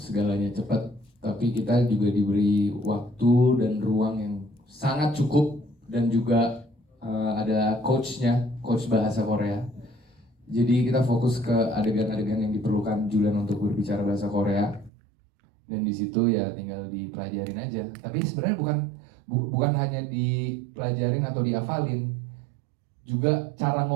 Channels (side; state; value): left; drops out; at 14.9 s